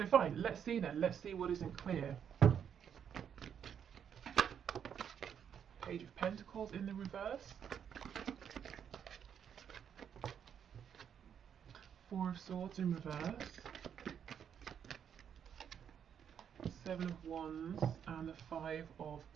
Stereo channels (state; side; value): quieter; left; 8.3 dB